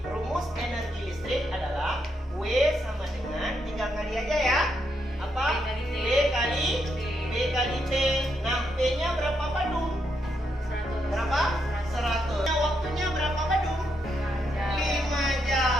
rumus energi listrik adalah W sama dengan, tinggal kali aja ya. Apa? B kali T. Nah, P-nya berapa Badung? 100. Berapa? 100. Waktunya berapa Badung? 5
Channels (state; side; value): normal; both; correlation 0.79